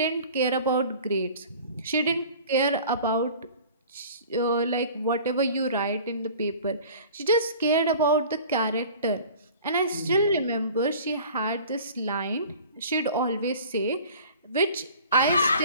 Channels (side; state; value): both; inverted; correlation -0.44